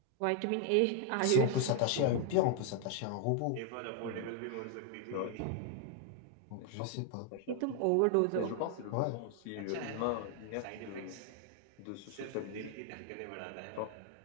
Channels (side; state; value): both; different; correlation 0.00